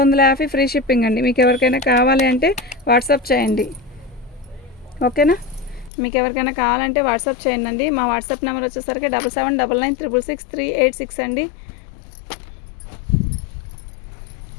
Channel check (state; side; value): drops out; right; at 5.9 s